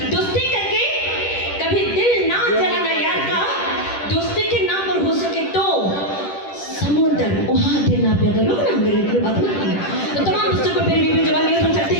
दोस्ती करके कभी दिल ना जलाना यार का। दोस्ती के नाम पर हो सके तो समुद्र उहा देना भी, अगर लोग ना मेरे को बात ना करना। तो तमाम दोस्तों को मेरे वीडियो जवानियों हम चाहते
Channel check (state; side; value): late; right; 10 ms